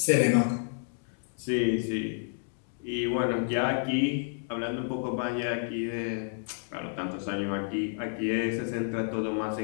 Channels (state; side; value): silent; right; digital silence